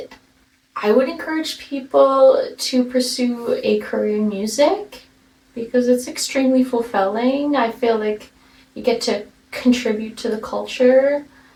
I would encourage people to pursue a career in music, because it's extremely fulfilling. I feel like you get to contribute to the culture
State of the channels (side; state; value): both; identical; correlation 1.00